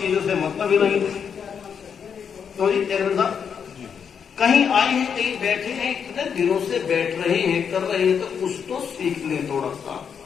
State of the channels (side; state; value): right; quieter; 7.1 dB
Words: से मतलब ही नहीं। तो जी चरण साहब कहीं आए हैं, कहीं बैठे हैं, इतने दिनों से बैठ रहे हैं, कर रहे हैं, तो कुछ तो सीख लें थोड़ा सा।